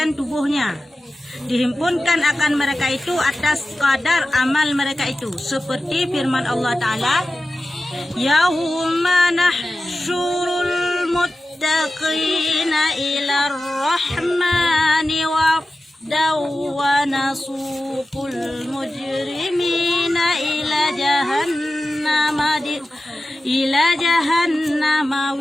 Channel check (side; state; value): both; normal; correlation 0.94